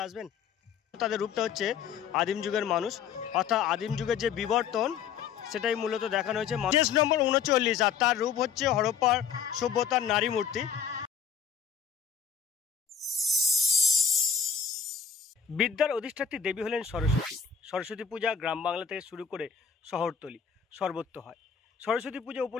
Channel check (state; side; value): quieter; right; 7.2 dB